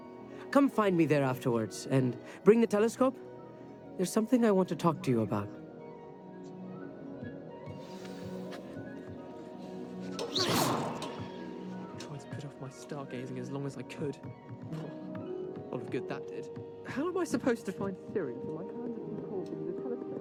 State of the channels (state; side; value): identical; both; correlation 1.00